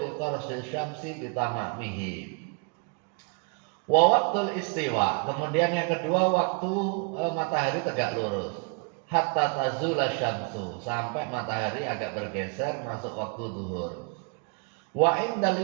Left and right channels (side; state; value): left; quieter; 35.7 dB